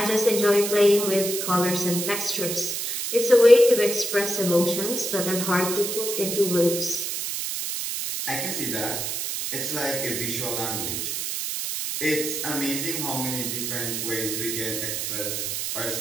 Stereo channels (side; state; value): right; noise; hiss, 3 dB below the sound